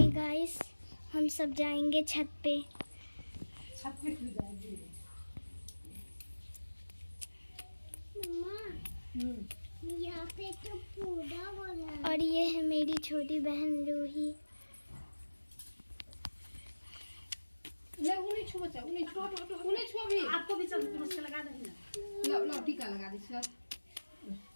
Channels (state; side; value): inverted; both; correlation -1.00